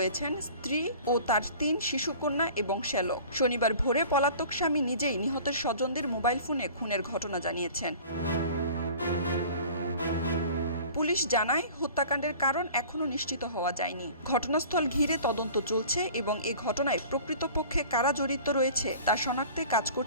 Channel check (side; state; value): both; inverted; correlation -0.44